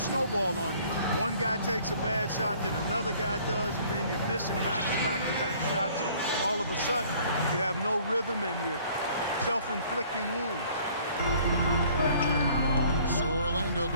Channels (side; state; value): both; inverted; correlation -0.56